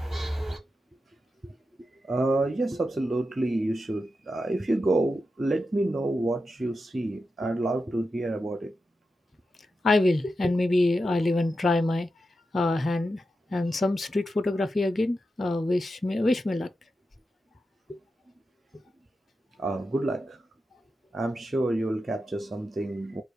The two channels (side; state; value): both; normal; correlation 0.89